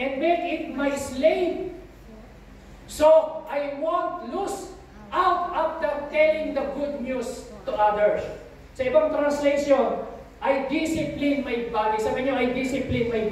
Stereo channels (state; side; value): identical; both; correlation 1.00